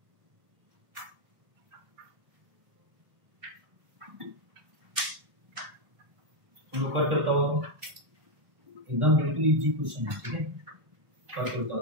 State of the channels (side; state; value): left; late; 1.3 ms